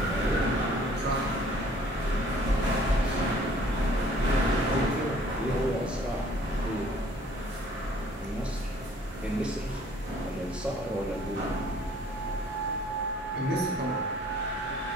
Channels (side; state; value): both; normal; correlation 0.56